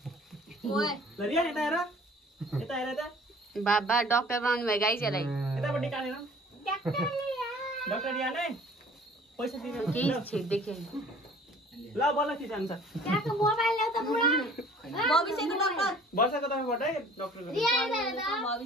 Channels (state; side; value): normal; both; correlation 0.51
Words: ल रियान यता हेर यता हेर यता बाबा डाक्टर बनाउनु भयो गाइस यसलाई यतापट्टि काटेन डाक्टर रियान है पैसा दिनु केही छेड देखे ल बल्ल के जान्छ वर्षाको तर्फबाट है डाक्टरको